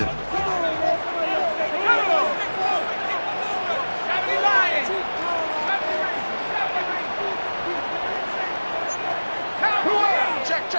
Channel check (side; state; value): both; inverted; correlation -1.00